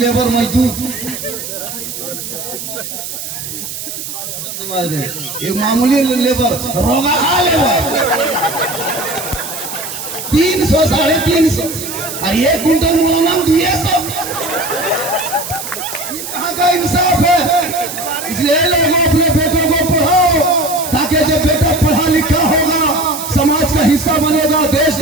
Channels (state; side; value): noise; right; hiss, 8 dB below the sound